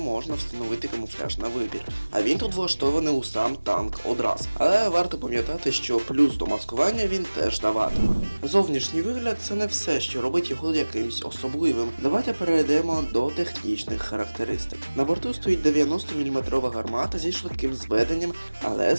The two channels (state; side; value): inverted; both; correlation -1.00